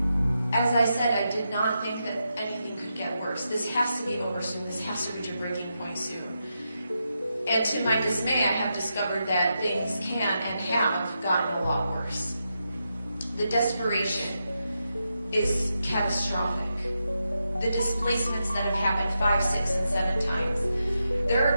as I said, I did not think that anything could get worse. This has to be over soon. This has to reach a breaking point soon. And to my dismay, I have discovered that things can and have gotten a lot worse. The desperation is catastrophic. The displacements that have happened 5, 6, and 7 times. There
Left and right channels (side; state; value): both; inverted; correlation -0.86